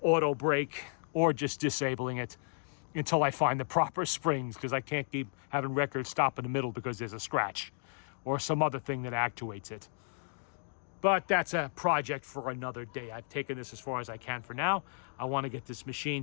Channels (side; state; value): right; silent; digital silence